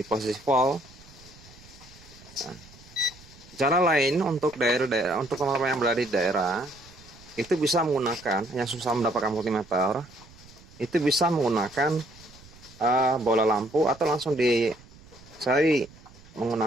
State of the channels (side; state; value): right; noise; rumble, 23 dB below the sound